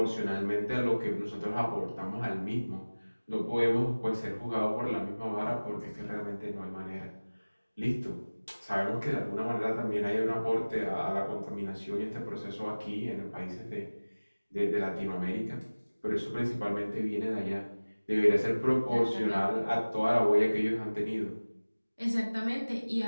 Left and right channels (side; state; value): both; inverted; correlation -1.00